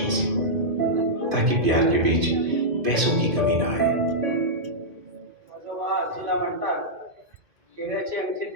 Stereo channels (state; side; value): late; left; 2.5 ms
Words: ताकि प्यार के बीच पैसों की कमी ना आए। आजोबा आजीला म्हणतात हिऱ्याची